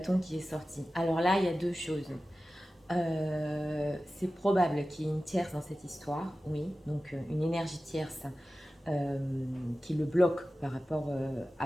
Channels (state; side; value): normal; both; correlation 0.95